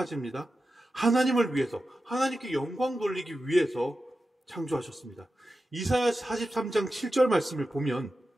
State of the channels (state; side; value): normal; both; correlation 0.92